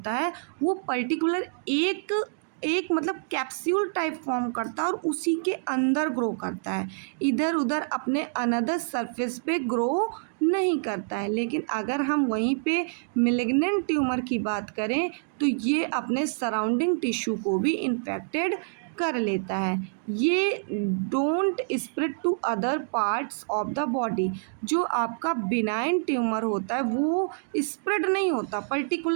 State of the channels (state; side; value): silent; left; digital silence